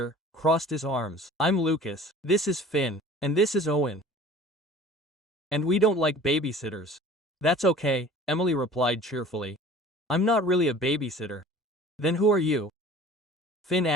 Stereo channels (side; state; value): both; normal; correlation 0.45